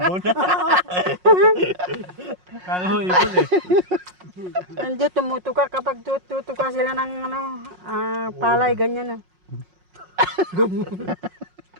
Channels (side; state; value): left; late; 5.5 ms